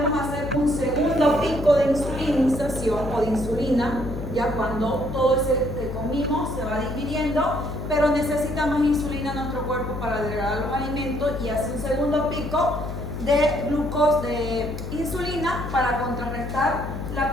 hacer un segundo pico de insulinización o de insulina, ya cuando todo ese que comimos se va digiriendo, pero necesita más insulina en nuestro cuerpo para degradar los alimentos y hace un segundo pico de glucosa, de insulina para contrarrestar la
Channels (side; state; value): left; noise; hum, 6 dB below the sound